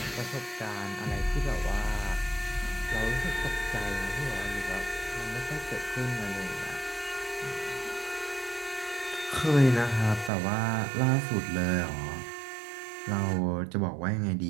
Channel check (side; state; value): left; drops out; at 10.3 s